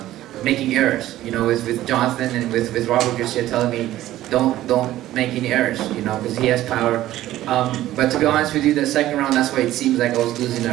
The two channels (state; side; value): quieter; left; 14.4 dB